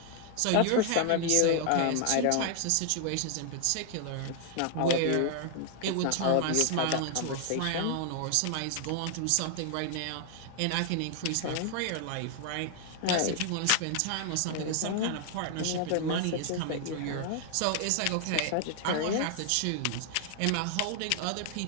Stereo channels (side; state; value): both; different; correlation 0.00